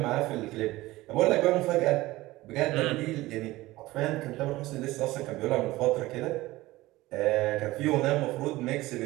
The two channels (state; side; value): quieter; left; 18.5 dB